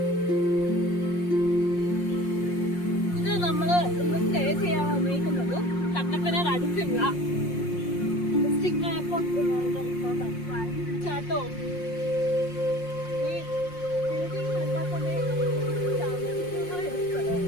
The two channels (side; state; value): right; late; 5.6 ms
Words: ഇത് നമ്മള് ഇന്ന് സ്റ്റേ ചെയ്യാൻ വന്നിരിക്കുന്നത് കട്ടപ്പന അടുത്തുള്ള ഡിസ്ട്രിക്ട് ചാട്ടോ